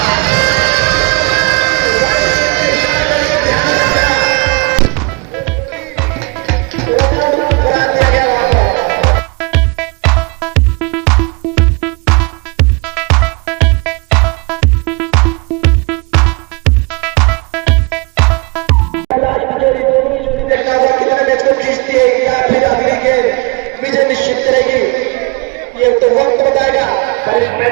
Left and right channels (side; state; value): left; quieter; 28.3 dB